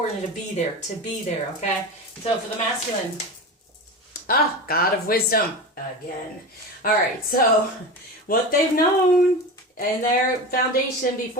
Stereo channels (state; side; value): normal; both; correlation 0.26